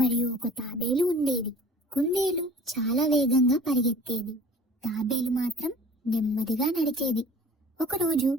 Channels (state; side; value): normal; both; correlation 0.46